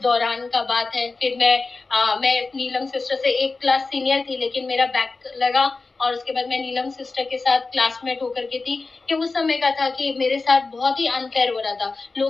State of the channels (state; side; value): quieter; right; 3.8 dB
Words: दौरान का बात है। फिर मैं नीलम सिस्टर से एक क्लास सीनियर थी, लेकिन मेरा बैक लगा, और उसके बाद मैं नीलम सिस्टर के साथ क्लासमेट होकर के थी। कि उस समय का था कि मेरे साथ बहुत ही अनफेयर हो रहा था,